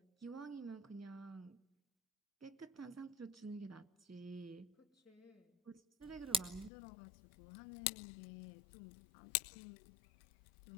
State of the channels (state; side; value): drops out; right; at 6.7 s